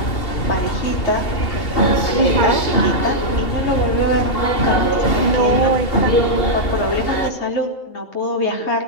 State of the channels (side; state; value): right; late; 2.7 ms